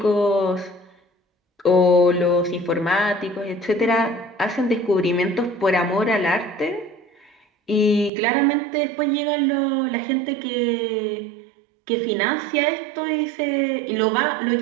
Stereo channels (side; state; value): left; drops out; at 8.1 s